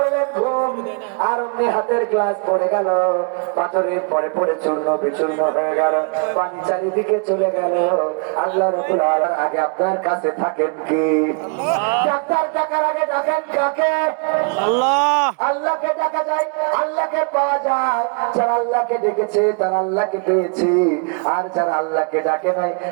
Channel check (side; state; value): left; quieter; 38.8 dB